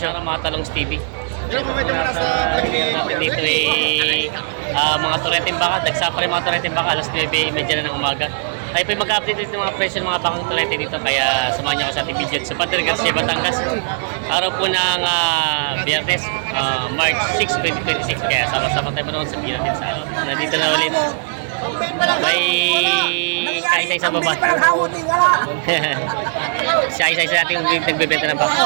Mga talong Stevie. Nasa natin dito mga tureteng baka. Dagsa pa rin mga tureteng baka. Alas 9:30 na ng umaga. Tayo po mag-update dito ng mga presyo ng mga bakang turete dito. Kaya samahan niyo ako sa ating video sa Padre Garcia, Batangas. Araw po ng Biyernes, March 6, 2026. Kaya sama-sama tayo manoon sa natin sa nandito na ulit. May kaisa-isa baba. Siya isa-isa natin nagbebenta ng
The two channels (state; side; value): silent; left; digital silence